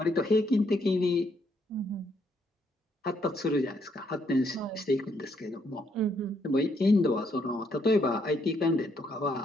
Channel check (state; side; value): normal; both; correlation 0.73